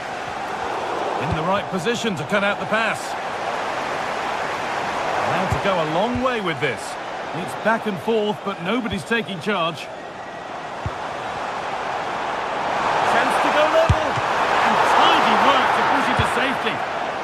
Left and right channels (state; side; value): identical; both; correlation 1.00